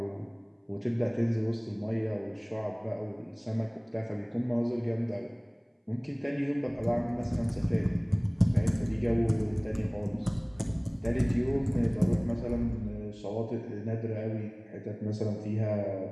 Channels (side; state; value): both; identical; correlation 1.00